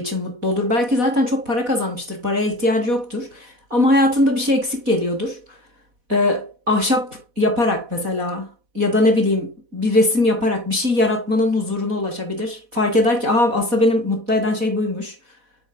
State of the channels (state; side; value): late; left; 4.1 ms